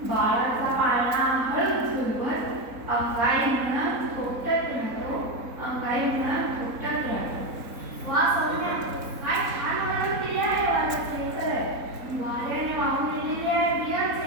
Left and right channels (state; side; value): late; left; 4.0 ms